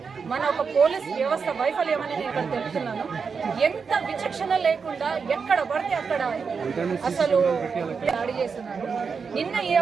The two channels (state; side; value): quieter; left; 5.6 dB